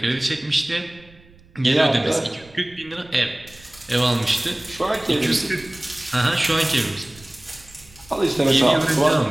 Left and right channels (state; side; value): noise; right; rumble, 25 dB below the sound